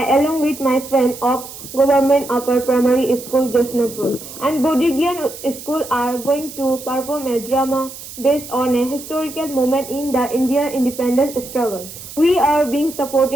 along with my friend of Government Upper Primary School Josnapur and Bodhigian School, are going to perform a drama based on a historical moment in the Indian independence struggle. We are being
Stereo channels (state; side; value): noise; right; hiss, 14 dB below the sound